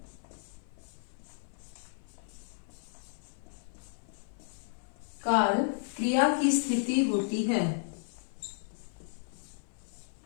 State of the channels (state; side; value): silent; right; 55 dB below the other